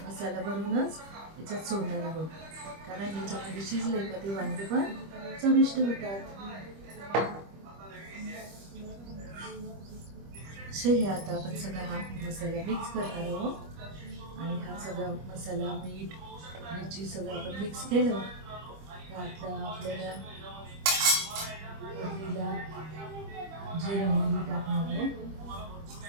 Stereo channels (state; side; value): late; left; 25 ms